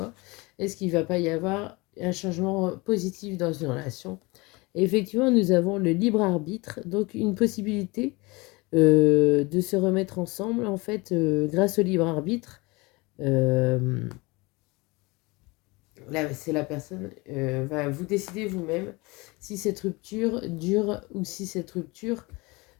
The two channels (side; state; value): right; quieter; 24.9 dB